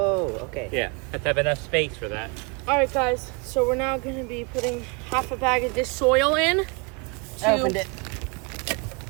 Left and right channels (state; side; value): quieter; left; 31.2 dB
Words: okay. Yeah, have to have enough space for that. All right, guys. So we're now going to be putting half a bag of this soil in. I opened it. Can